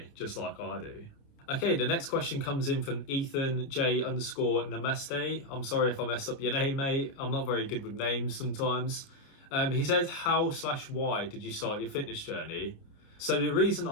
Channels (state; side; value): late; right; 29 ms